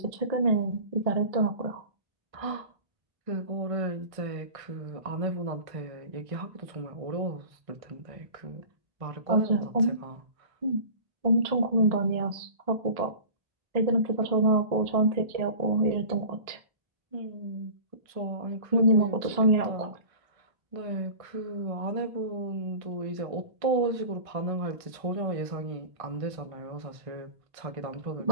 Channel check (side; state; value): left; late; 1.5 ms